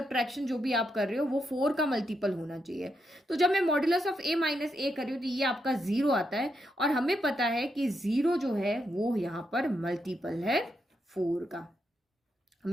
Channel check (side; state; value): both; normal; correlation 0.82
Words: जो भी आप कर रहे हो वो 4 का मल्टीपल होना चाहिए। तो जब मैं मॉड्यूलस ऑफ a माइनस ए कर रही हूँ तो ये आपका 0 आता है, और हमें पता है कि 0 जो है वो यहाँ पर मल्टीपल है 4 का।